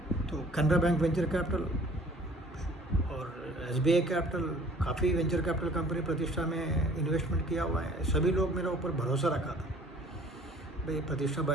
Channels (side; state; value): both; normal; correlation 0.53